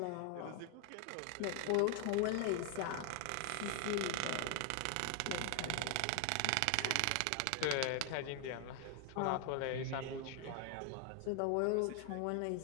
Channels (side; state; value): both; different; correlation 0.00